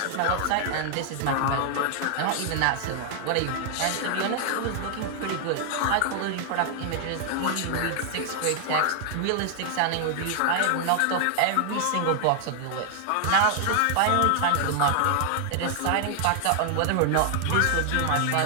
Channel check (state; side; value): different; both; correlation 0.00